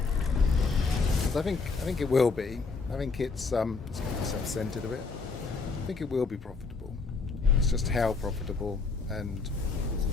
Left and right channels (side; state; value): right; quieter; 4.4 dB